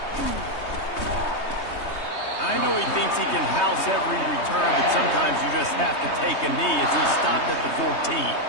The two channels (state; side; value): late; right; 3.2 ms